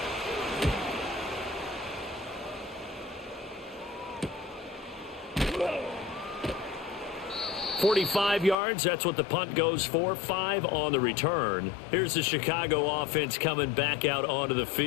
45 yards, that's what the punt goes for. 5 on the return. Here's the Chicago offense coming back out onto the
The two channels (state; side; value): drops out; right; at 8.6 s